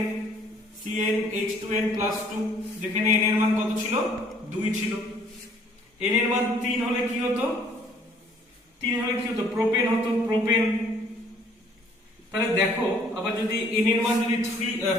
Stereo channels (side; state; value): both; normal; correlation 0.59